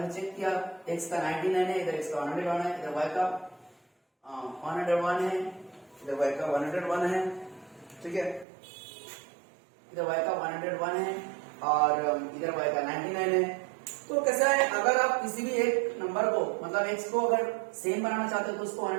चेक किया, एक्स का 99 है, इधर एक्स का 101 है, इधर वाई का 101 है, इधर वाई का 101 है, ठीक है। इधर y का 101 है और इधर y का 99 है। तो कैसा है, अगर आप किसी भी एक नंबर को, मतलब x को अगर सेम बनाना चाहते हो तो उसको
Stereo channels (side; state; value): left; drops out; at 8.5 s